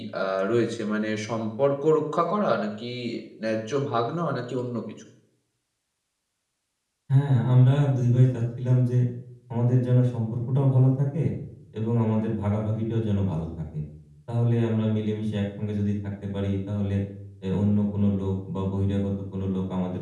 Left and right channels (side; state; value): both; identical; correlation 1.00